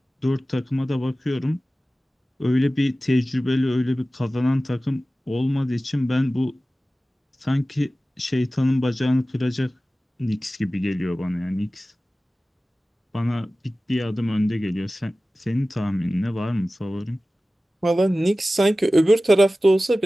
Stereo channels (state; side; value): normal; both; correlation 0.96